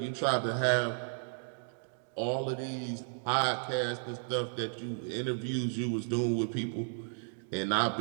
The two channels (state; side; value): silent; left; digital silence